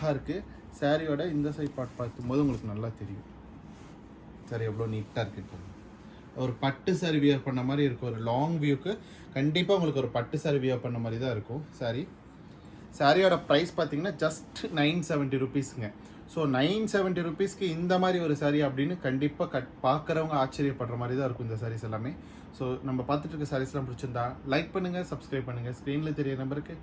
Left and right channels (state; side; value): identical; both; correlation 1.00